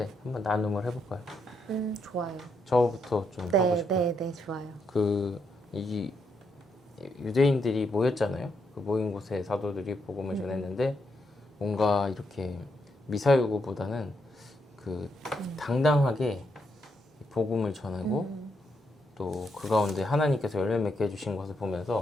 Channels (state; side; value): normal; both; correlation 0.79